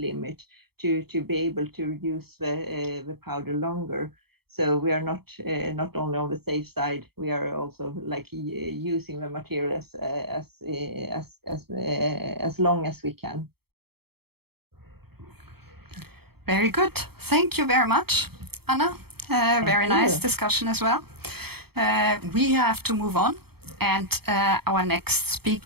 to be able to use the powder longer. So we are not only on the safe side, we are also like using the material as long as we can. Very good. Thank you very much, Anna. Very nice discussion as well. We have to move on, and our next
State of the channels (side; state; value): left; late; 0.96 ms